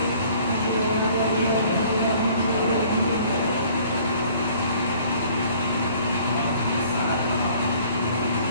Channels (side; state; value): both; inverted; correlation -0.55